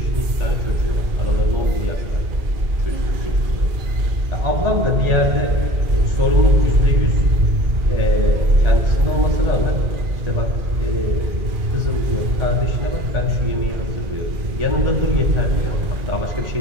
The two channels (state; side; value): late; left; 2.4 ms